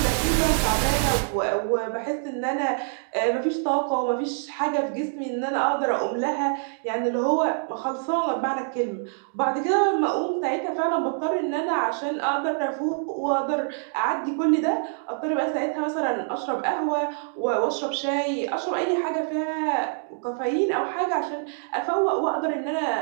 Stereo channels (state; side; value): silent; left; digital silence